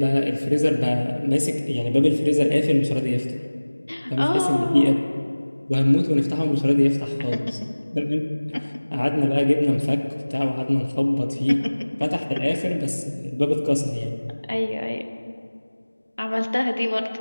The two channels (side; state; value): both; inverted; correlation -1.00